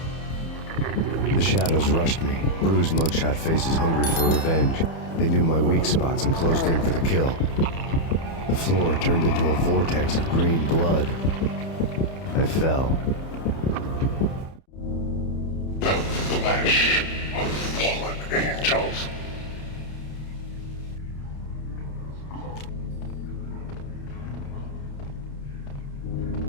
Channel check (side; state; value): right; late; 30 ms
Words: The shadows rushed me, bruised mugshot faces hungry for revenge. They knew my weak spots and closed in for the kill. The floor turned into a vortex of green blood. I fell. The flesh of fallen angels.